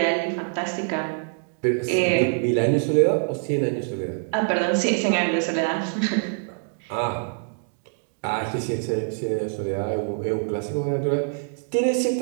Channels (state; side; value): silent; left; digital silence